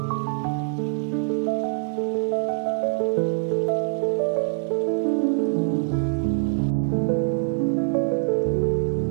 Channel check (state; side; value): silent; left; digital silence